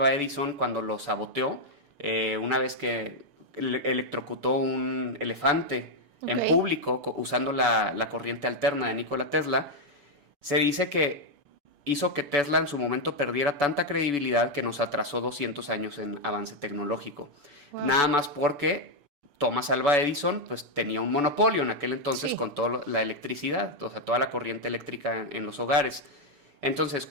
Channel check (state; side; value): late; left; 7.0 ms